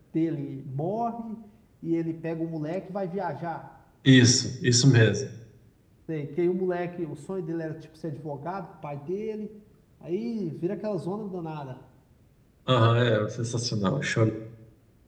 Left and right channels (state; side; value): identical; both; correlation 1.00